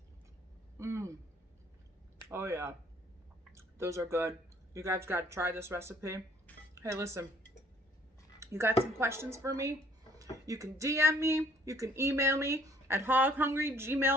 Oh yeah, those are good. You guys got to try this recipe. Hey, listen, you got some questions for me? You can DM me, you can email me at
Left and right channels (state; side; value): normal; both; correlation 0.60